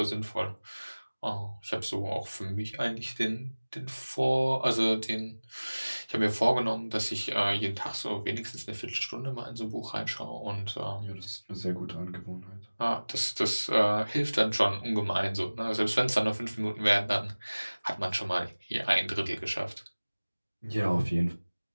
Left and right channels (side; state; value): both; inverted; correlation -1.00